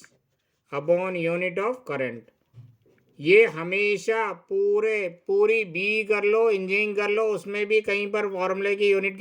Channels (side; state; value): both; identical; correlation 1.00